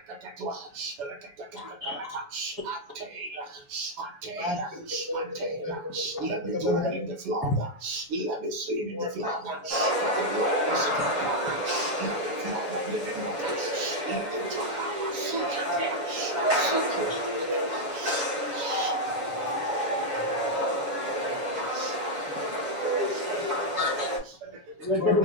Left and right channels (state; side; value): late; left; 7.1 ms